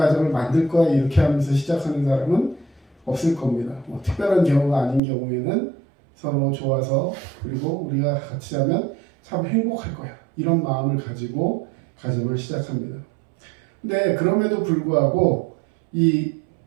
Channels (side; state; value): left; drops out; at 5.0 s